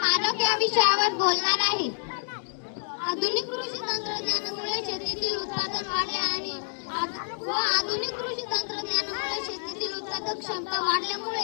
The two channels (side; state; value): right; silent; digital silence